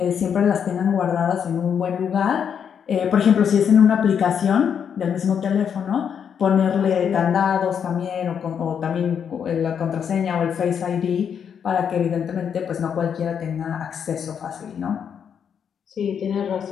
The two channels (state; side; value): quieter; right; 7.7 dB